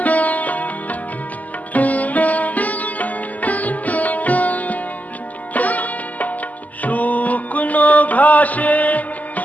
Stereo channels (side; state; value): right; late; 0.078 ms